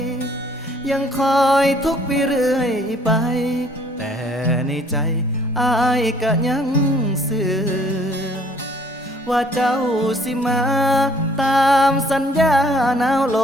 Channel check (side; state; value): both; normal; correlation 0.59